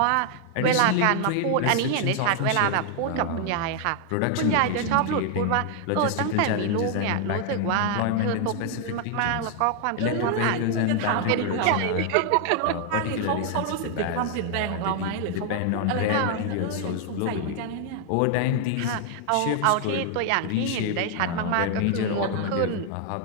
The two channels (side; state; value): both; different; correlation 0.00